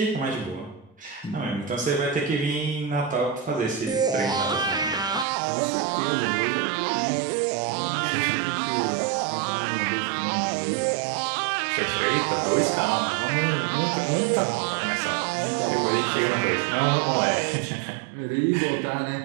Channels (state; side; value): drops out; left; at 5.2 s